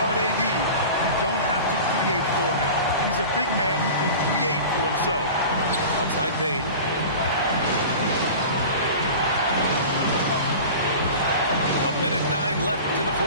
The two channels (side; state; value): both; inverted; correlation -0.36